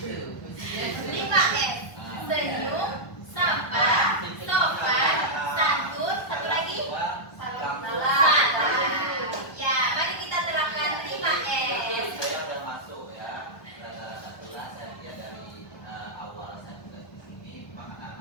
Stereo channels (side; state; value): right; late; 1.2 ms